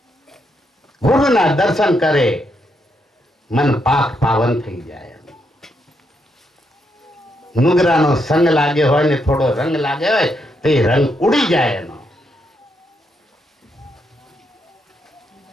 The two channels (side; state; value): both; normal; correlation 0.79